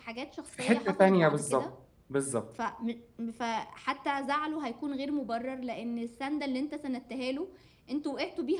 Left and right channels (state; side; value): identical; both; correlation 1.00